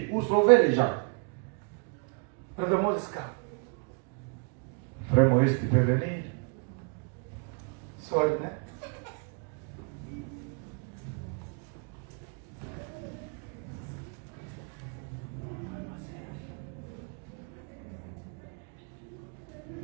ou sauver les gens. Brother Moses, come. Frère Moïse, tu peux venir. Sorry, hein?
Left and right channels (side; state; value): left; quieter; 37.4 dB